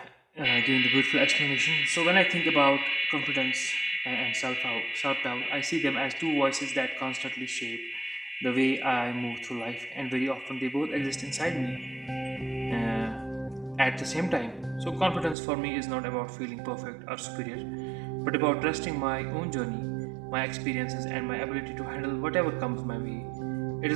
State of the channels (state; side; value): drops out; left; at 15.4 s